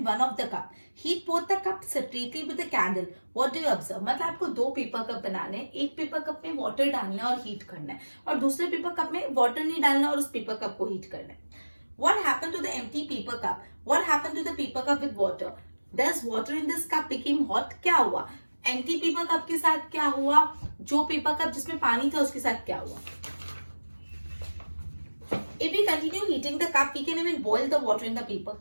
one of the cup. Heat both the cups separately with a candle. What do you observe? मतलब आपको 2 paper cup बनाने हैं, एक पेपर कप में वाटर डालना है और हीट करना है, और दूसरे पेपर कप में वाटर नहीं डालना और उस पेपर कप को हीट करना है. What happened to the empty paper cup? What happened to the paper cup with water? Does water in this cup became hot? क्या हुआ? एम्प्टी पेपर कप के साथ क्या हुआ? जो पेपर कप जिसमें पानी था उसके साथ क्या हुआ? If we continue heating the cup, we can even boil the water in the paper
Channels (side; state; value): both; inverted; correlation -1.00